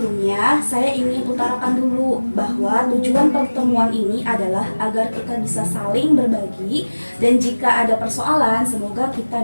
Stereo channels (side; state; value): both; inverted; correlation -1.00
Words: saya ingin utarakan dulu bahwa tujuan pertemuan ini adalah agar kita bisa saling berbagi dan jika ada persoalan semoga kita